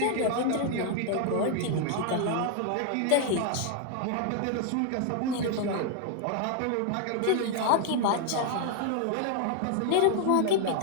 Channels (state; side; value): different; both; correlation 0.00